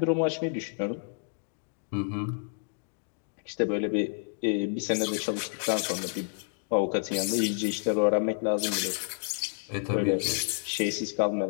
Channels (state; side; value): silent; right; 58 dB below the other